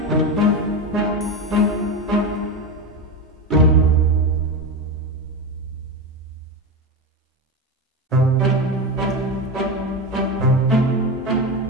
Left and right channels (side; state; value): both; normal; correlation 0.18